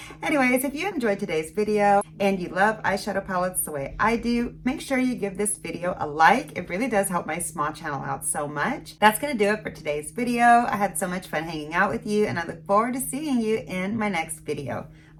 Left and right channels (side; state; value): both; identical; correlation 1.00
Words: Anyways, if you enjoyed today's video and you love eyeshadow palettes the way I do, make sure you give this video a like. It really does help my small channel out so much. That's gonna do it for today's video. I had so much fun hanging out with you, and I look forward to seeing you in my next video.